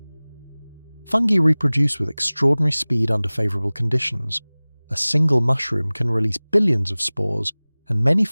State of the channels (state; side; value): inverted; both; correlation -1.00